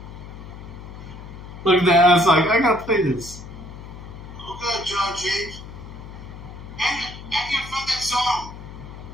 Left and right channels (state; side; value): noise; left; hum, 13 dB below the sound